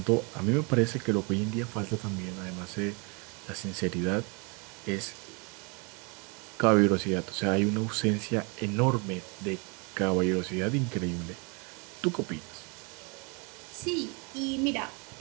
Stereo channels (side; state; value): left; quieter; 32.2 dB